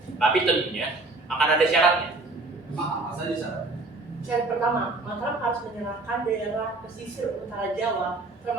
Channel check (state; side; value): quieter; left; 3.2 dB